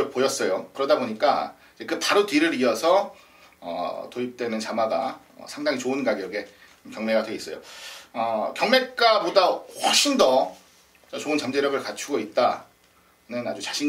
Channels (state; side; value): identical; both; correlation 1.00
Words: 보였어요. 그러다 보니까 그 바로 뒤를 이어서 도입되는 자마가 상당히 좋은 가격에 경매가 돼 있어요. 경매가보다 훨씬 더 좋은 잠재력을 갖추고 있다는 아주